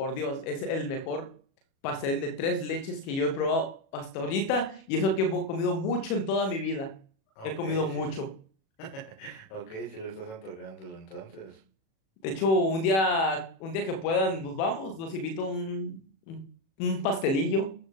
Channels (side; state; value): right; late; 37 ms